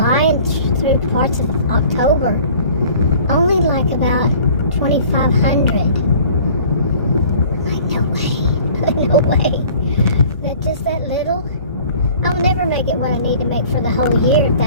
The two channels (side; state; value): both; inverted; correlation -0.49